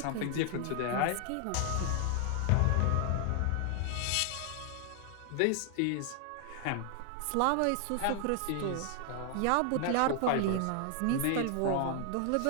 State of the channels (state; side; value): different; both; correlation 0.00